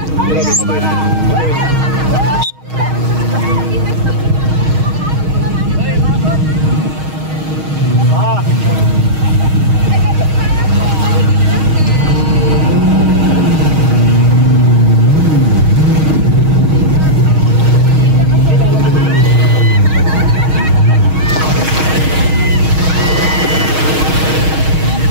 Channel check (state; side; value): late; left; 6.4 ms